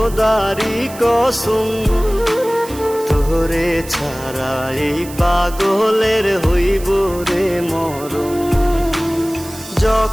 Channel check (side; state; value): right; noise; hiss, 16 dB below the sound